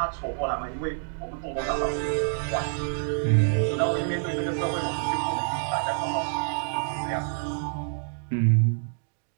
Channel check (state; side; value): silent; left; digital silence